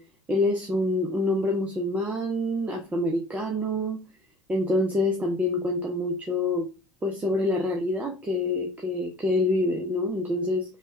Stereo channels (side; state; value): both; normal; correlation 0.48